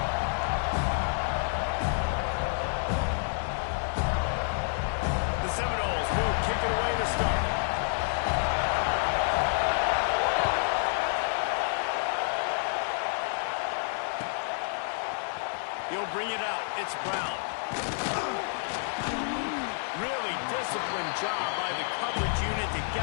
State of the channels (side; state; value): right; silent; 58 dB below the other